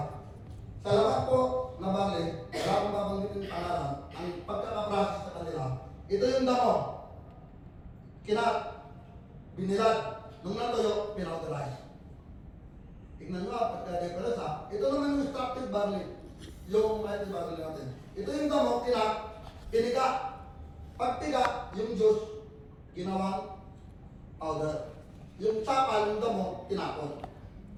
Sa labas po na barley, wala akong babanggitin yung pangalan, ang pagkakaprocess sa kanila, ito yung damo. Kinat, binilad, nung natuyo, pinauterize. Tignan nyo ha, pagka-difference ha. Ito naman yung extracted barley, yung mighty barley natin. Ito yung damo, kinat, piniga. Pagpiga, yung juice, ginawang powder. Yung sapal, yung damo, tinapon.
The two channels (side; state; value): both; identical; correlation 1.00